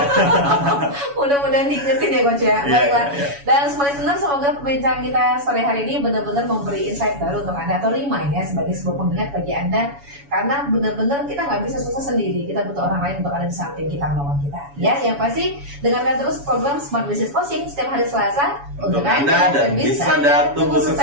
Mudah-mudahan diingetin ya Coach ya. Baiklah. Dan semua listener, semoga perbincangan kita sore hari ini benar-benar memberi insight baru untuk Anda, atau remind ya, sebagai sebuah pengingat bagi Anda, karena benar-benar kita nggak bisa sukses sendiri. Kita butuh orang lain untuk ada di samping kita, menolong kita. Ya, yang pasti dengarkan terus program Smart Business Coaching setiap hari Selasa untuk Anda dan bisnis Anda tumbuh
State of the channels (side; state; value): left; late; 7.1 ms